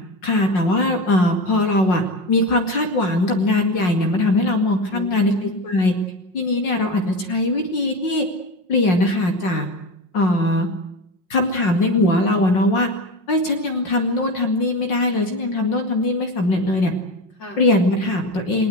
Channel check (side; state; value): right; late; 5.5 ms